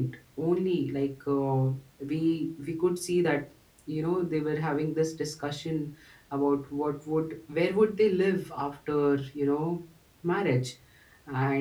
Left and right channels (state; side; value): identical; both; correlation 1.00